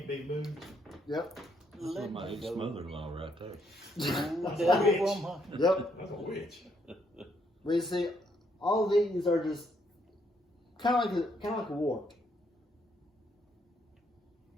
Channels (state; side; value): normal; both; correlation 0.73